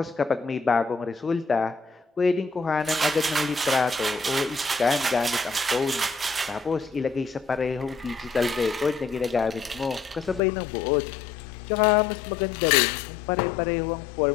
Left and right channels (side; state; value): right; drops out; at 10.4 s